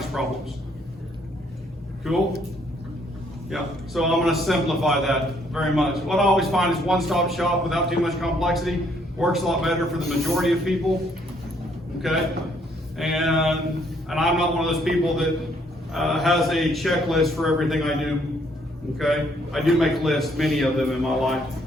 problems. Cool? Yeah, so I'm going to simplify that very much. What I always find is one-stop shop without too much complexity works a lot better for the majority of people. Okay, and I'm not one of those people that has a checklist for everything I do. Okay, I do make lists, many of them in my life,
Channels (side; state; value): both; normal; correlation 0.67